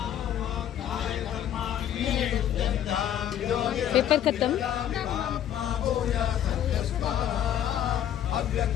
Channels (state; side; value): quieter; right; 10.5 dB